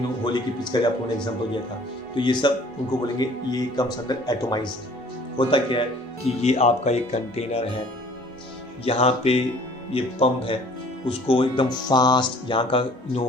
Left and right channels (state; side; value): normal; both; correlation 0.53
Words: होली की पिचकारी आपको मैंने एग्जांपल दिया था, तो ये सब उनको बोलेंगे ये कम्स अंडर एटोमाइजर। होता क्या है कि ये आपका एक कंटेनर है, यहाँ पे ये पंप है, उसको एकदम फास्ट, यहाँ का